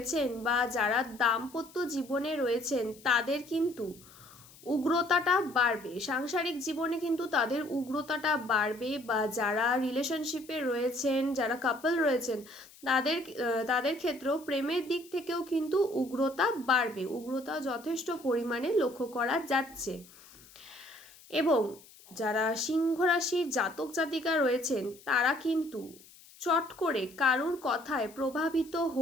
বা যারা দাম্পত্য জীবনে রয়েছেন তাদের কিন্তু উগ্রতাটা বাড়বে, সাংসারিক জীবনে কিন্তু তাদের উগ্রতাটা বাড়বে। বা যারা রিলেশনশিপে রয়েছেন, যারা কাপল রয়েছেন তাদের ক্ষেত্রেও প্রেমের দিক থেকেও কিন্তু উগ্রতা বাড়বে, উগ্রতা যথেষ্ট পরিমাণে লক্ষ্য করা যাচ্ছে। এবং যারা সিংহ রাশির জাতক জাতিকা রয়েছেন তারা কিন্তু চট করে কারুর কথায় প্রভাবিত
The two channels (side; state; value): left; noise; hiss, 23 dB below the sound